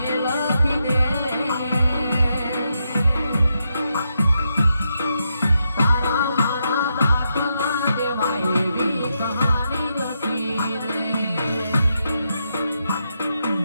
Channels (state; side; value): inverted; both; correlation -0.83